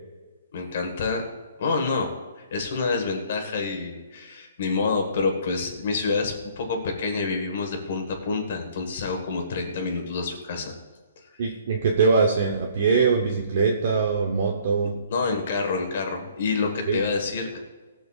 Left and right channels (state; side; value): inverted; both; correlation -0.57